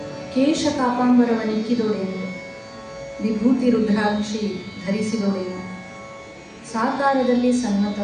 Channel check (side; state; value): both; identical; correlation 1.00